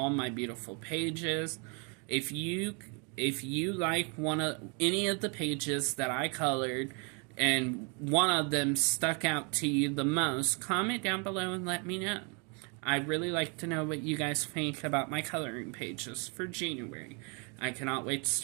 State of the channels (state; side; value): quieter; left; 34.8 dB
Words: my beautiful pages. If you like any of the pages that I colored and one of them stuck out to you the most, comment down below and let me know. I'd really like to know what you guys think about my coloring pages for January. I cannot wait to